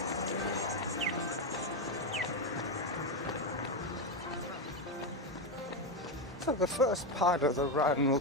So the first part of the run will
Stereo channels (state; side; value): normal; both; correlation 0.10